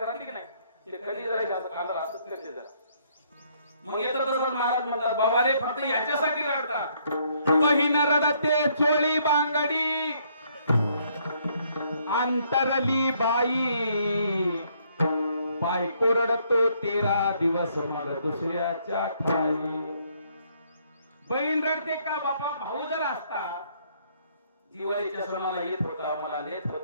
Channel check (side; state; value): both; inverted; correlation -0.68